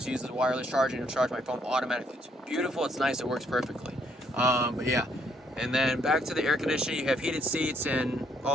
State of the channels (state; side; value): normal; both; correlation 0.69